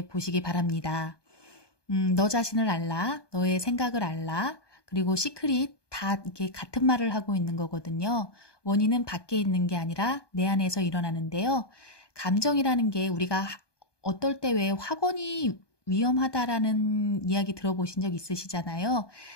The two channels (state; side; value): late; right; 1.2 ms